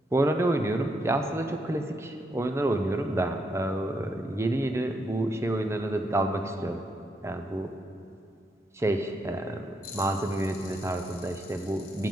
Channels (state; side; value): normal; both; correlation 0.78